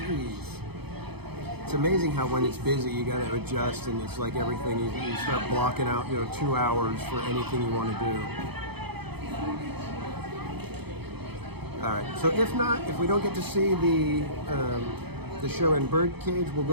It's amazing how when it's busy you gotta adjust, and it's like everything, you start blocking out, 2 hours for anything you want to do. Alright, so if we don't get to see the show in birdcage, we'll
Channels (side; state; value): left; late; 0.98 ms